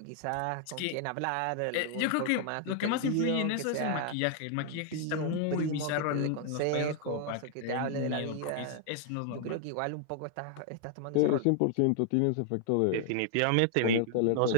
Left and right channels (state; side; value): different; both; correlation 0.00